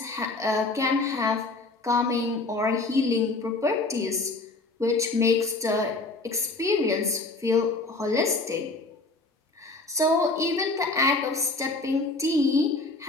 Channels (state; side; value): quieter; right; 3.3 dB